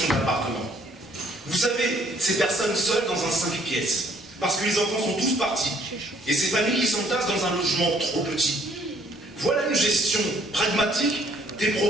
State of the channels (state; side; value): normal; both; correlation 0.63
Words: d'appartement. Vous savez, ces personnes seules dans un 5 pièces, parce que les enfants sont tous partis, et ces familles qui s'entassent dans un logement trop petit. Voilà une gestion pragmatique des